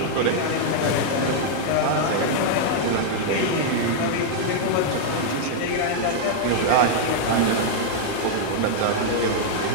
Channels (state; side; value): different; both; correlation -0.01